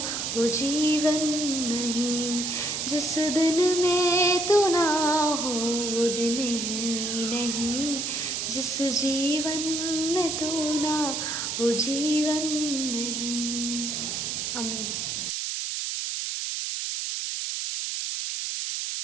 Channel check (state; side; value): noise; right; hiss, 2 dB below the sound